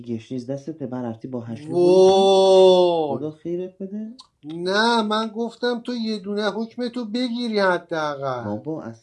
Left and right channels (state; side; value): identical; both; correlation 1.00